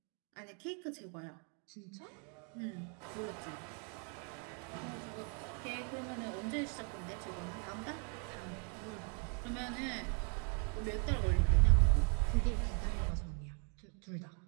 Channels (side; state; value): left; quieter; 39.1 dB